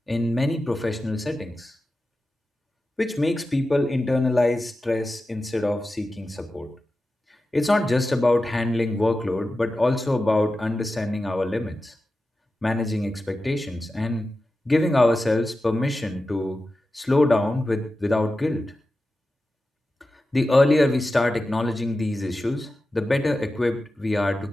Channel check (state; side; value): normal; both; correlation 0.93